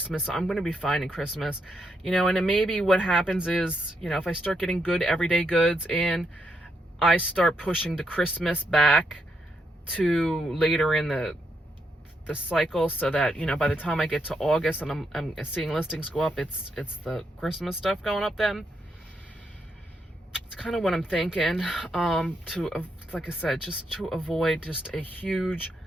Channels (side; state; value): both; normal; correlation 0.79